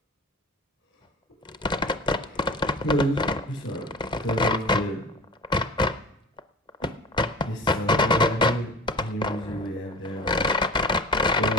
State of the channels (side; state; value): both; normal; correlation 0.38